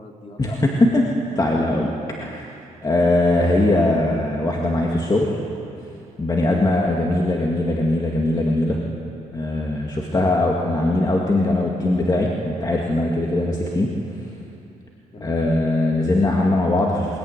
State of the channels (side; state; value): both; normal; correlation 0.81